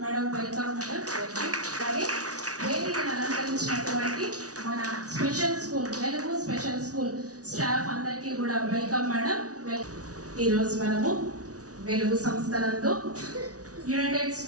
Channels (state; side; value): late; left; 0.67 ms